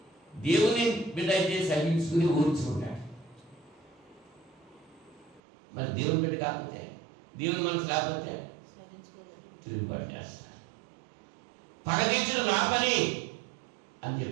దేవుని బిడ్డ అయితే సహించుకుని ఓర్చుకుంటాడు. మరి దేవుని బిడ్డ కాకపోతే, దేవుని మనసు లేకపోతే తిరుగుబాటు చేస్తారు. పగ తీర్చుడు నా పని అని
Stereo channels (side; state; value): left; drops out; at 5.4 s